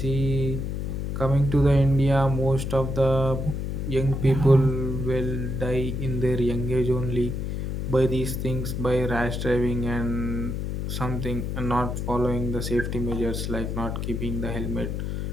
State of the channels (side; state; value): left; noise; hum, 3 dB below the sound